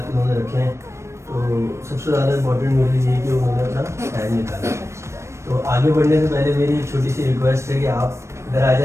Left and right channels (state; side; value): late; left; 0.13 ms